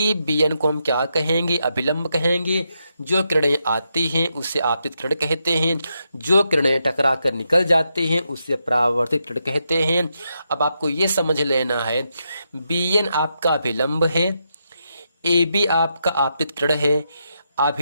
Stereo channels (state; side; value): inverted; both; correlation -0.82